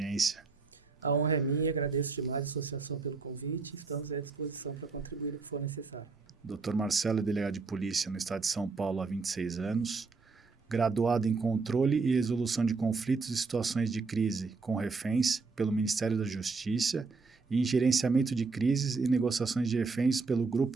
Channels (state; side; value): quieter; left; 4.3 dB